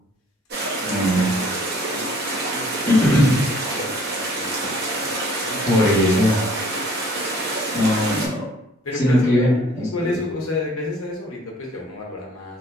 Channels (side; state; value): both; normal; correlation 0.57